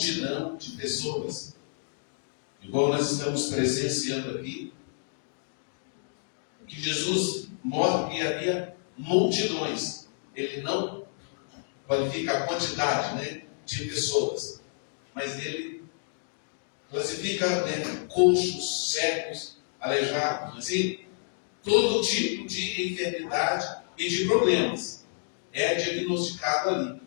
de pessoas, igual nós estamos presenciando aqui, que Jesus mostra que havia multidões. Ele não qualifica a quantidade, de pessoas, mas ele classifica coxos, cegos, aleijados, assim, todo tipo de enfermidade e de problemas. é diagnosticado ali,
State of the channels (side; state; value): right; silent; digital silence